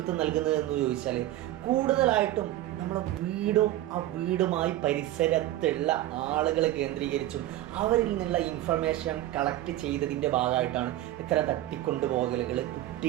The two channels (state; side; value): quieter; left; 14.5 dB